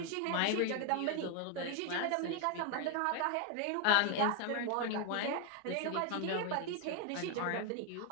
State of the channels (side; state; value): both; different; correlation 0.01